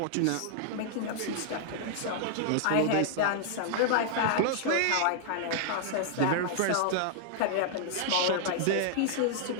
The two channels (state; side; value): different; both; correlation -0.01